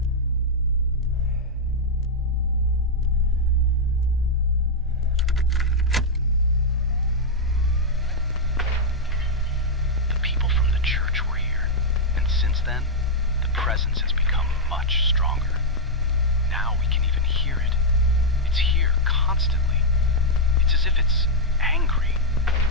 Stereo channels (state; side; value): normal; both; correlation -0.03